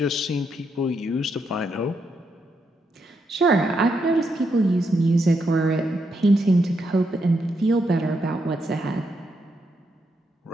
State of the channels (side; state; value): both; normal; correlation 0.80